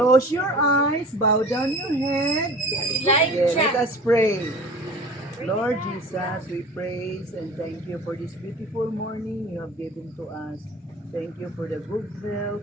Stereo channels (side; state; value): both; normal; correlation 0.41